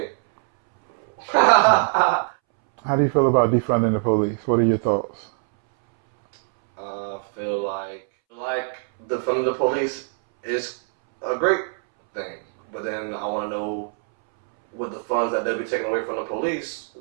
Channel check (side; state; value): left; silent; 64 dB below the other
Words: How do you feel about defunding the police? What are your thoughts? I feel like defunding the police is a great thing, but then I want to know, with the funds that they'll be taking away from the police,